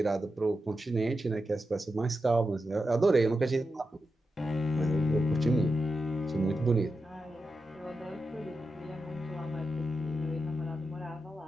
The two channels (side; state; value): both; normal; correlation 0.89